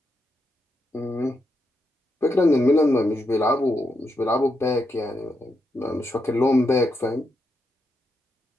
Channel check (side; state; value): both; normal; correlation 0.83